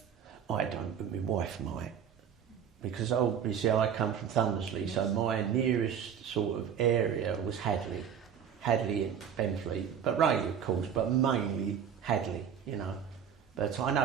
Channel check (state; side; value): quieter; left; 8.2 dB